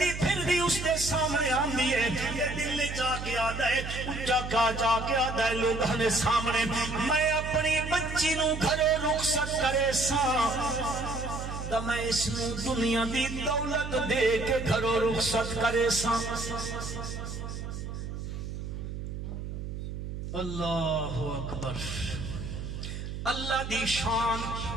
پھر بھی اس دے سامنے آندی ہے یہ دل لے جا کے آدھا ہے اچھا کا جا کے آدھا ہے لوگوں نے سامنے میں اپنی بچی نو گھروں رخصت کرے ساں تو میں اس نو دنیا دی دولت دے کے گھروں رخصت کرے ساں اللہ اکبر اللہ دی شان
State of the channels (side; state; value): right; noise; hum, 7 dB below the sound